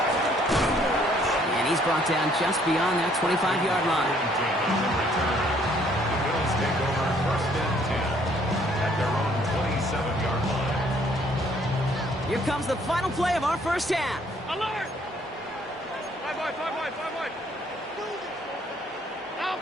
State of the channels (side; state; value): both; normal; correlation 0.63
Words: And he's brought down just beyond that 25-yard line. The Bills take over 1st and 10 at their own 27-yard line. Here comes the final play of our first half. Alert! 5 wide, 5 wide, 5 wide. Out,